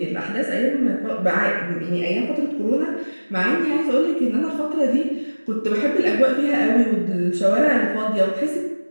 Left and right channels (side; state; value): both; inverted; correlation -1.00